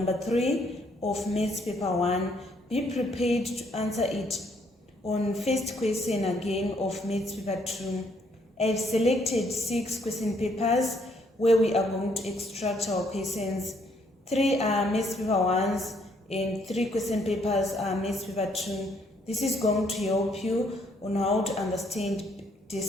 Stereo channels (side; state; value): both; normal; correlation 0.69